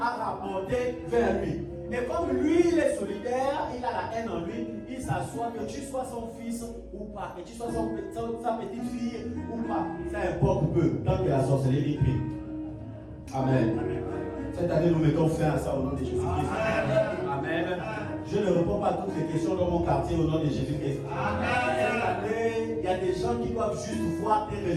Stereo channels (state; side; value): identical; both; correlation 1.00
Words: a rapporté vers lui. Et comme lui, il est solidaire, il a la haine en lui, il s'assoit, que tu sois son fils ou pas, que tu sois sa petite fille ou pas, ça importe peu, tant que la sorcellerie prie. Amen. Cette année, nous mettons fin à ça au nom de Jésus-Christ. Amen. Je ne réponds pas à toutes les questions dans mon quartier au nom de Jésus-Christ. Cette année, il y a des gens qui doivent juste voir tes